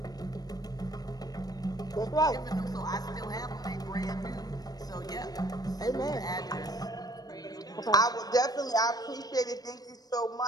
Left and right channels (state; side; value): late; right; 0.19 ms